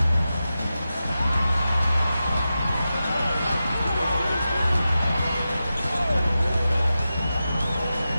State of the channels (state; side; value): inverted; both; correlation -0.92